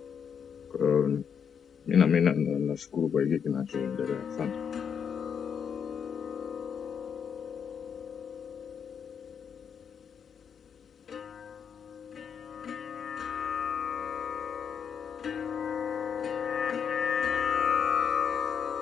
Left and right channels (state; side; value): quieter; right; 7.3 dB